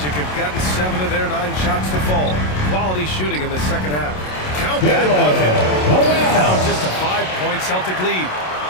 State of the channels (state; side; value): late; right; 27 ms